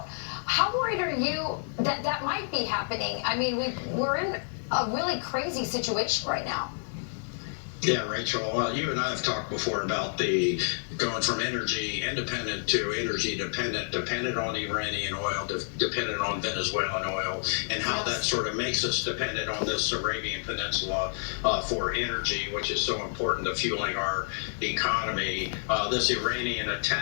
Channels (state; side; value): silent; right; 59 dB below the other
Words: How worried are you that that might be happening? I mean, we're in a really crazy situation right now. Yeah, Rachel, you and I have talked before about the going from energy independent to energy dependent on Iranian oil, dependent on Venezuelan oil, and how that sort of makes us dependent on this Arabian Peninsula for energy, which is so important to fueling our economy. This Iranian